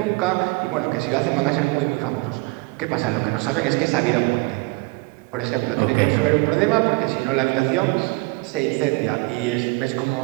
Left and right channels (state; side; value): quieter; left; 26.1 dB